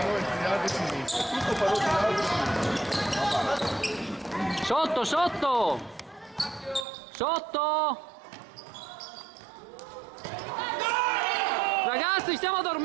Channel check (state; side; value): drops out; left; at 6.9 s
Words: Sotto, sotto! Sotto! Ragazzi, stiamo